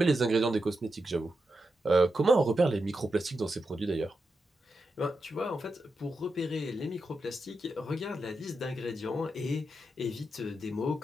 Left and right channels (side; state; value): both; normal; correlation 0.87